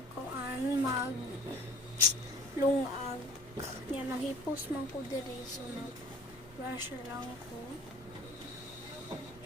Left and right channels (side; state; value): both; normal; correlation 0.48